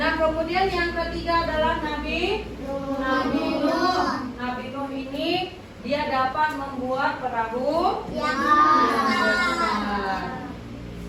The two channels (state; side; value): identical; both; correlation 1.00